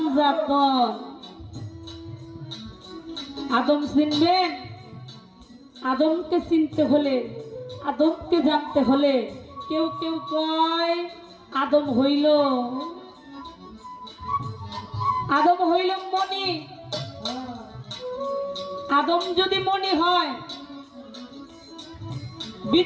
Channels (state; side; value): identical; both; correlation 1.00